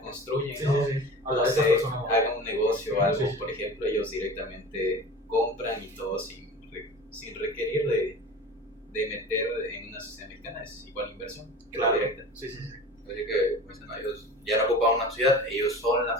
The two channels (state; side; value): normal; both; correlation 0.37